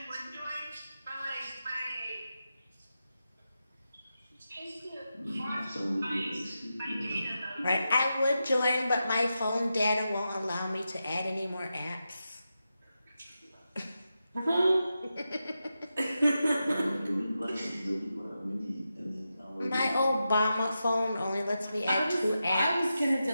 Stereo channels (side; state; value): both; inverted; correlation -0.89